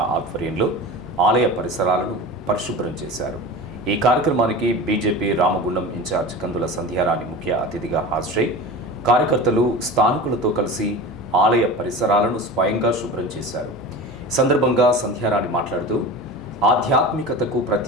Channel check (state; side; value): normal; both; correlation 0.32